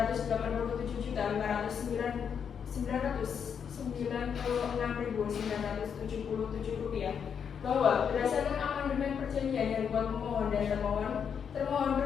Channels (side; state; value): right; quieter; 7.3 dB